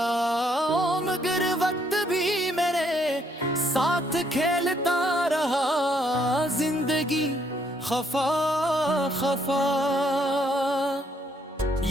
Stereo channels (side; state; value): both; normal; correlation 0.70